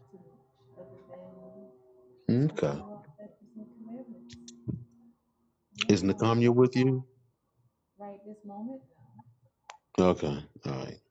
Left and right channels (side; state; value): both; identical; correlation 1.00